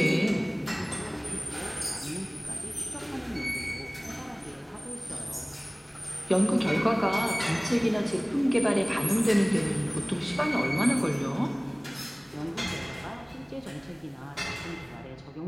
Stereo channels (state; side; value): identical; both; correlation 1.00